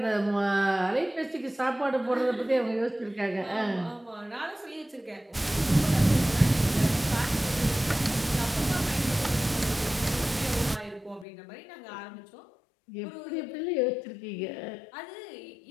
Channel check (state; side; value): drops out; right; at 11.2 s